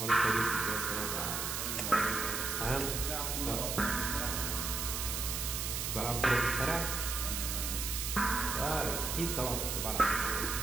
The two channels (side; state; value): right; noise; hiss, 2 dB below the sound